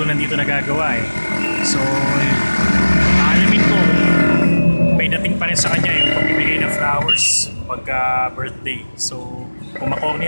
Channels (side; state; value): both; inverted; correlation -1.00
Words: nandito nagagawa eh. So, alamin ko may dating pa rin sa kanya yung pagbibigay ng flowers pagka birthday. So, kung